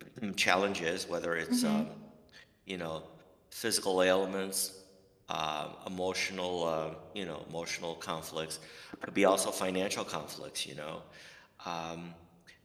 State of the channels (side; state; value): both; identical; correlation 1.00